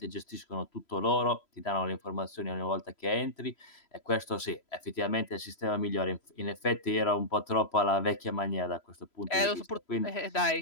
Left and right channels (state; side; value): late; right; 3.0 ms